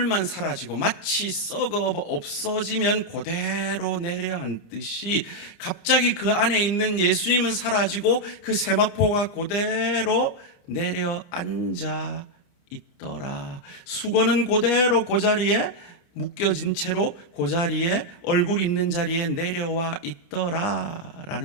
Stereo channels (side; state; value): right; late; 29 ms